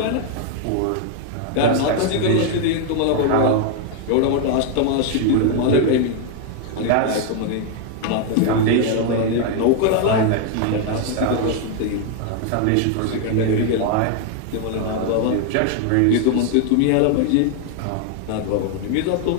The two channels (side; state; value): both; different; correlation 0.00